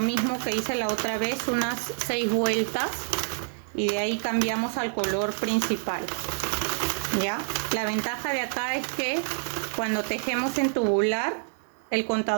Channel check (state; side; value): silent; left; digital silence